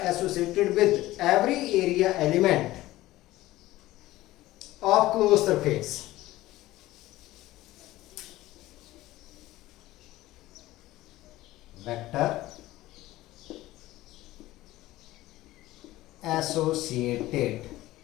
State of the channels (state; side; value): quieter; right; 16.8 dB